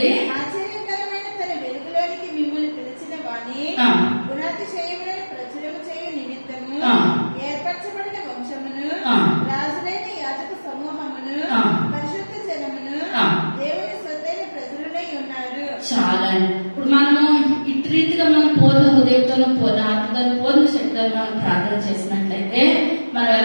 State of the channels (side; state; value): both; inverted; correlation -1.00